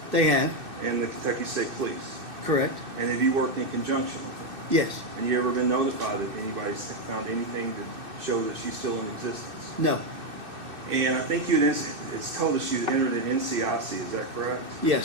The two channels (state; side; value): late; left; 2.6 ms